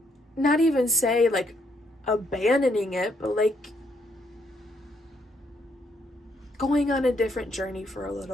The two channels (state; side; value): normal; both; correlation 0.73